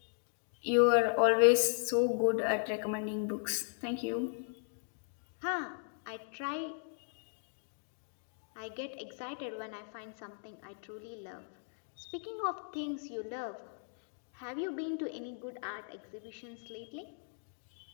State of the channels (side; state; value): right; silent; digital silence